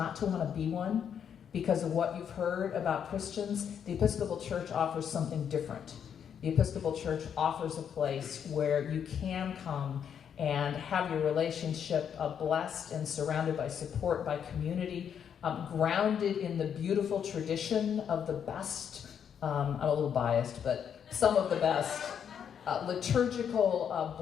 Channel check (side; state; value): right; quieter; 8.1 dB